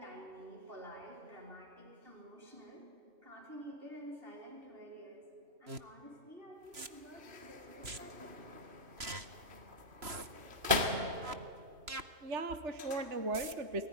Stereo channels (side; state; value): left; late; 3.0 ms